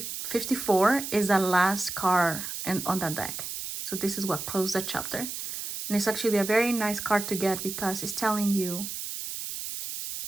54 is the last card on that deck. So this is what closed the chapter. And it's actually a very nice card to get because it's telling you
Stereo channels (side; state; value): right; noise; hiss, 6 dB below the sound